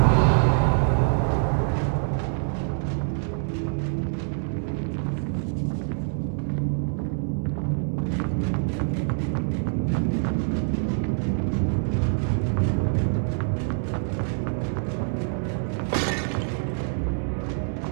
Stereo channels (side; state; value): left; silent; 61 dB below the other